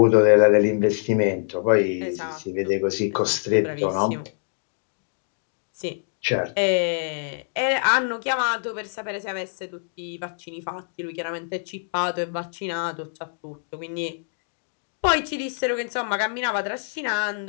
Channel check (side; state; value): right; silent; digital silence